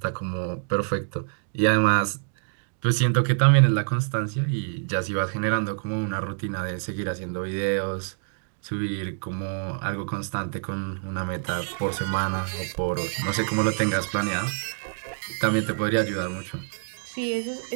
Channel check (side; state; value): left; silent; digital silence